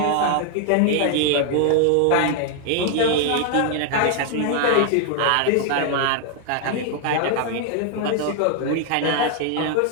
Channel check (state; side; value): different; both; correlation 0.00